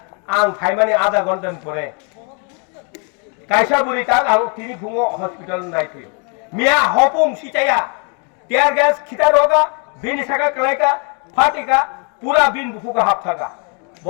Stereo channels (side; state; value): right; quieter; 37.8 dB